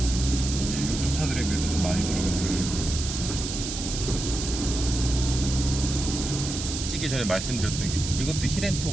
이게 요즘 차들에 비해서 좀 많이 돌아가는 게. 찍기 전에 말씀드렸던 게 이것도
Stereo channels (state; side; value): noise; right; hiss, 6 dB below the sound